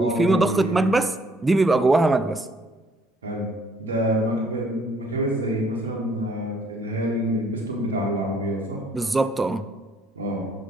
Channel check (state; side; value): normal; both; correlation 0.64